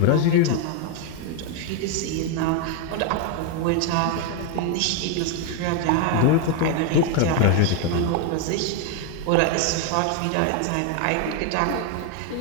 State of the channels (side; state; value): both; different; correlation 0.01